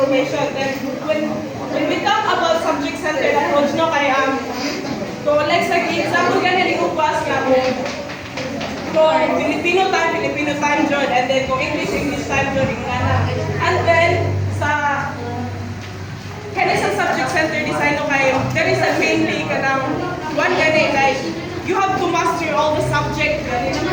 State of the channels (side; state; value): both; identical; correlation 1.00